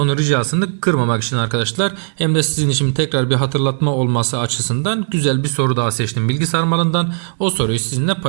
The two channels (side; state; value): left; silent; 68 dB below the other